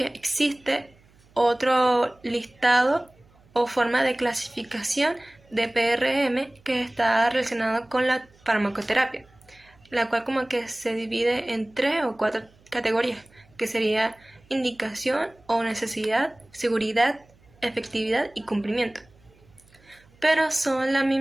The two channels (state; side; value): noise; right; hum, 30 dB below the sound